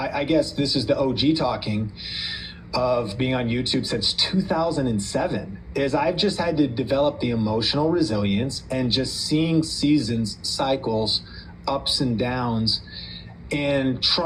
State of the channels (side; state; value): both; identical; correlation 1.00